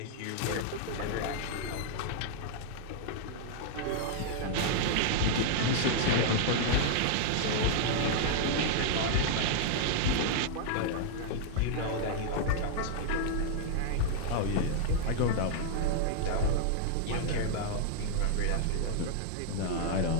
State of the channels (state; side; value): different; both; correlation -0.01